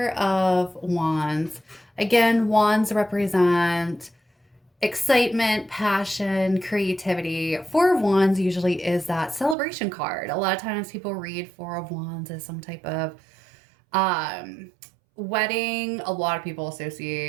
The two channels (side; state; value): left; drops out; at 9.6 s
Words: of Wands. Again, wands represent excitement, passion, creativity. Four of Wands usually is that celebration card. A lot of times people read Four of Wands as some type of um, wedding. A lot of people